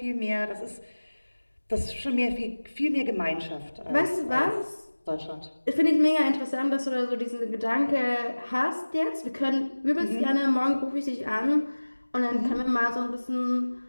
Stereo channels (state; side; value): inverted; both; correlation -1.00